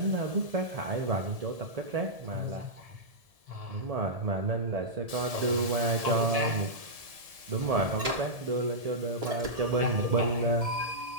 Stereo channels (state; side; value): late; left; 1.7 ms